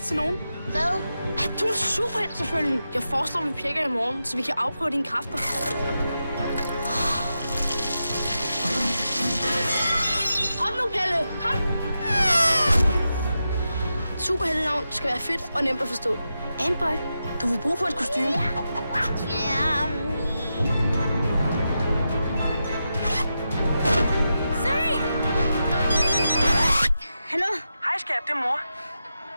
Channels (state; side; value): inverted; both; correlation -0.89